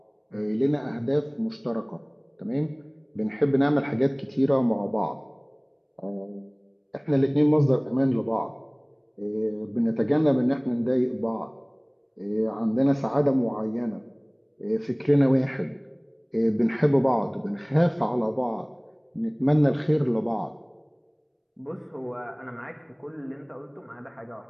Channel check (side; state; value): both; identical; correlation 1.00